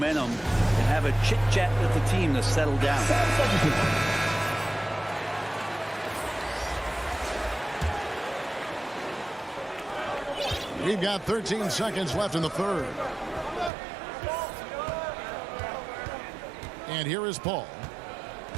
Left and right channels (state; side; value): drops out; left; at 13.7 s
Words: and have a chit-chat with the team to settle down. We've got 13 seconds left in the third. And here is Paul.